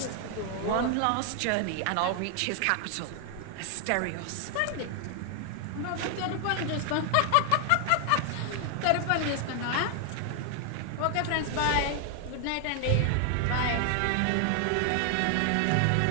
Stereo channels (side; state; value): both; different; correlation 0.00